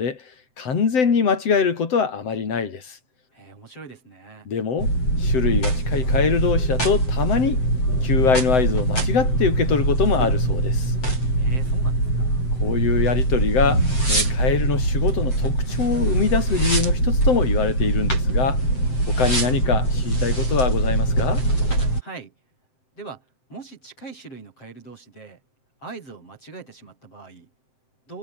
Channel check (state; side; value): late; right; 7.7 ms